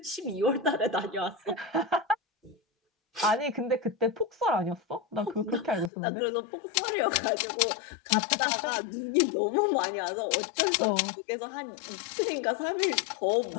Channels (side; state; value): right; drops out; at 5.9 s